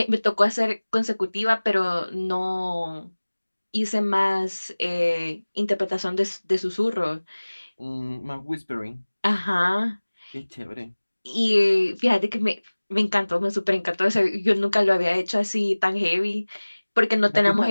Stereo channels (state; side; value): inverted; both; correlation -1.00